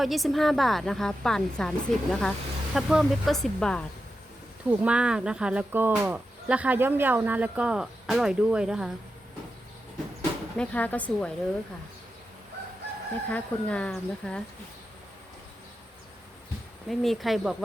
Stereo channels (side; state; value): both; normal; correlation 0.89